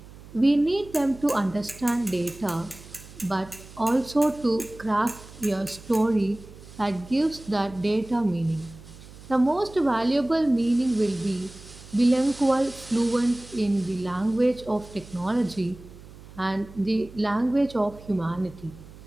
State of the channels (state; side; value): noise; right; hum, 19 dB below the sound